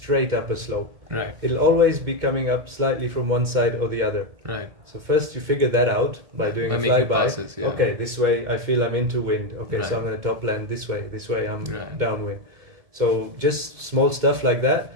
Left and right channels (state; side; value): late; left; 2.2 ms